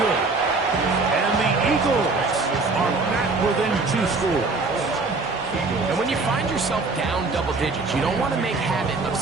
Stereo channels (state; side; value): quieter; left; 3.8 dB